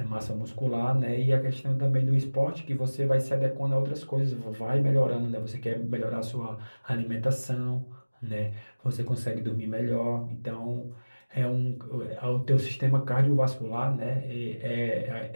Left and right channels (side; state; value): both; inverted; correlation -1.00